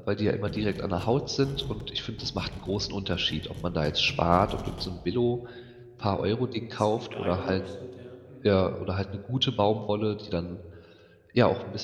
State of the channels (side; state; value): both; identical; correlation 1.00